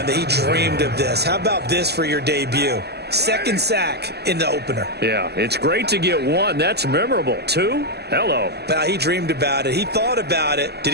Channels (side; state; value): left; late; 0.48 ms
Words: that he dreamed of this. How about this for your debut? Second sack in the opener. Yeah, it's great to get 1. That's memorable. 2? Hello. Now, he dreamed about it. He thought about it. Did